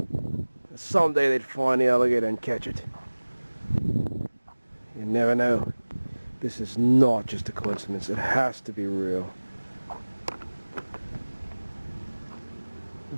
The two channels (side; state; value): both; inverted; correlation -1.00